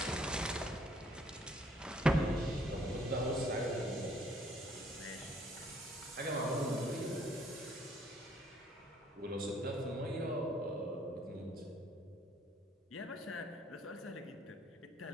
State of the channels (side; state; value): both; normal; correlation 0.63